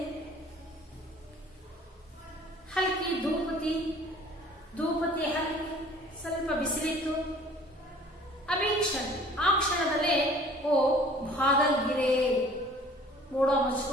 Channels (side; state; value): both; normal; correlation 0.51